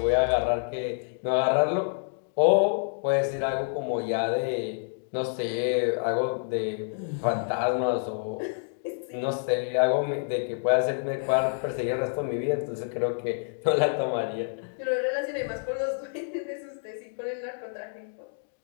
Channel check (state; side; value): silent; right; digital silence